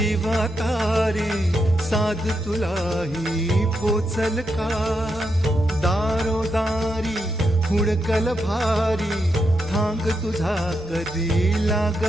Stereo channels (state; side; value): normal; both; correlation 0.83